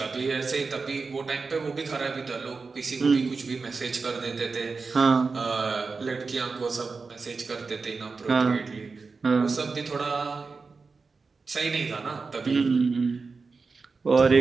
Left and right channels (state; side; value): quieter; left; 4.4 dB